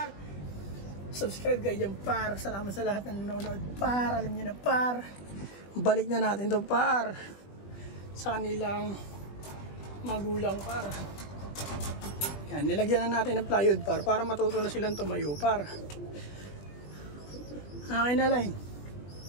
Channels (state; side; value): late; right; 20 ms